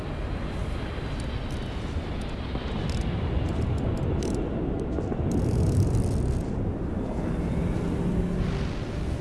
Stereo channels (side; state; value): both; identical; correlation 1.00